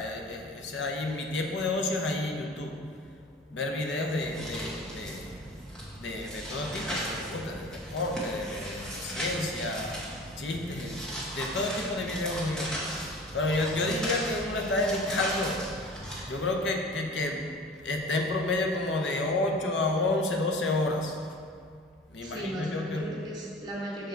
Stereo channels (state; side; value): normal; both; correlation 0.41